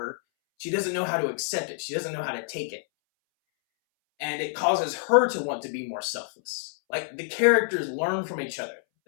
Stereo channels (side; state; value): right; silent; 60 dB below the other